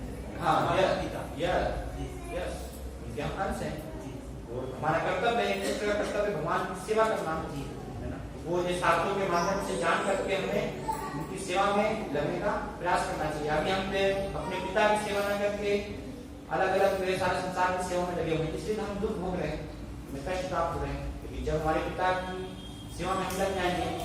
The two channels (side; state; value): both; identical; correlation 1.00